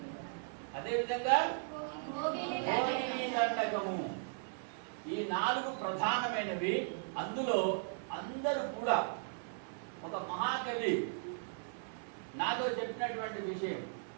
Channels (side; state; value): left; silent; 53 dB below the other